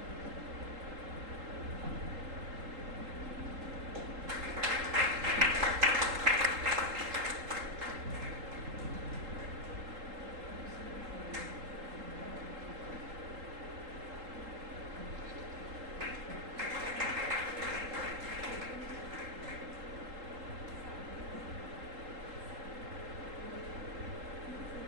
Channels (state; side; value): late; left; 3.8 ms